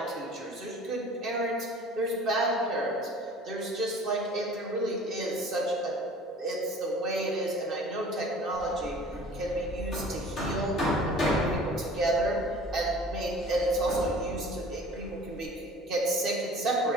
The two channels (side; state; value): both; normal; correlation 0.46